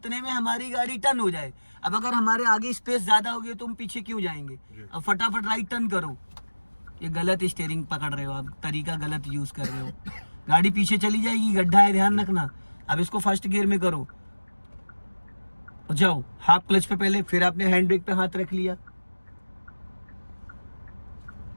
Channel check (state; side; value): inverted; both; correlation -1.00